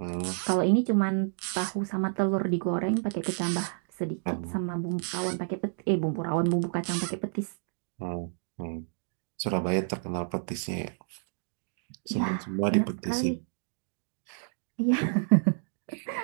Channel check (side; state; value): left; silent; digital silence